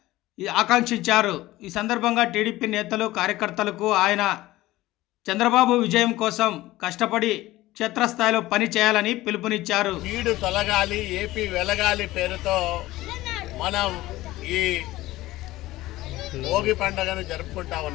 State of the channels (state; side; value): quieter; right; 17.3 dB